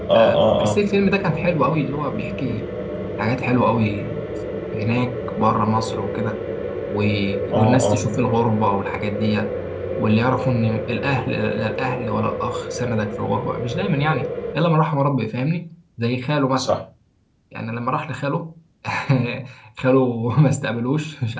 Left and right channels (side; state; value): both; identical; correlation 1.00